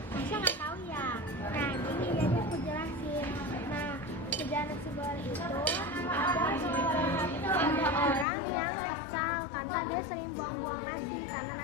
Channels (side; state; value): right; drops out; at 8.2 s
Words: Nasya nggak tahu ya. Nah gini jadi aku jelasin. Nah kerjaan nasi goreng itu ada orang yang kesal karena dia sering buang-buang nasi